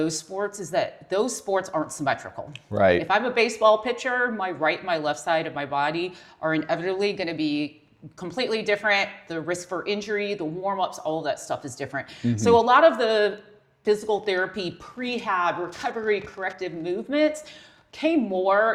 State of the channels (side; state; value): both; identical; correlation 1.00